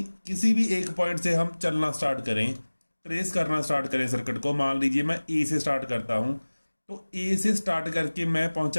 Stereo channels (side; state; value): both; inverted; correlation -1.00